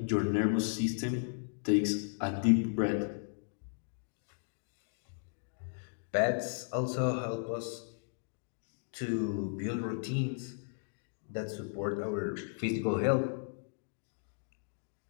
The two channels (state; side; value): silent; right; digital silence